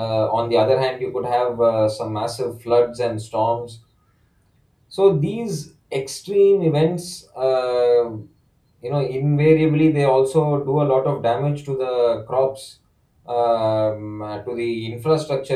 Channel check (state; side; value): identical; both; correlation 1.00